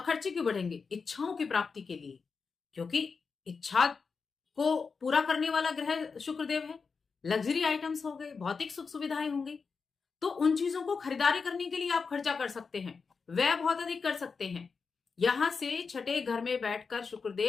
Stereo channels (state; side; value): quieter; right; 5.1 dB